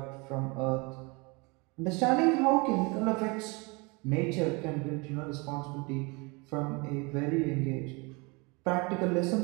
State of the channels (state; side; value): quieter; left; 28.4 dB